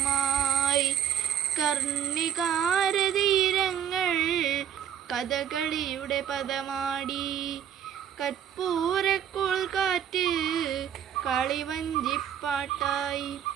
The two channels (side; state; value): left; quieter; 9.3 dB